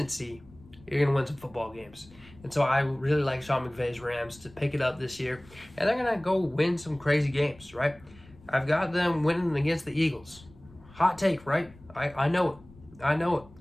you're going to win some football games. And so I really like Sean McVay's Rams to pick it up this year. And they're going to go win some crazy games, right? I've got them winning against the Eagles. Hot take, right? I know it.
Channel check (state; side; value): noise; left; rumble, 24 dB below the sound